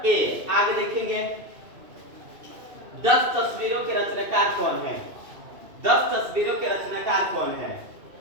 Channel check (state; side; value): late; left; 2.7 ms